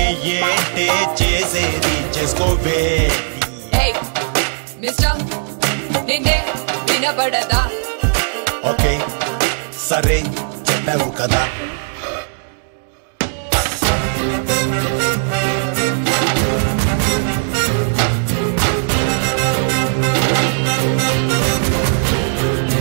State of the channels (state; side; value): silent; left; digital silence